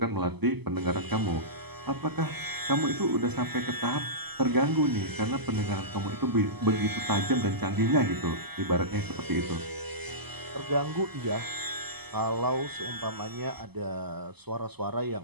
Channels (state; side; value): late; left; 0.98 ms